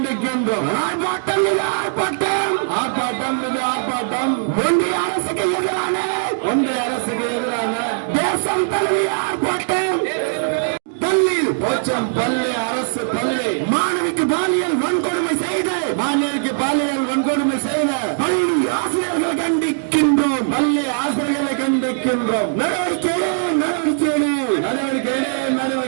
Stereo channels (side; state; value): left; silent; digital silence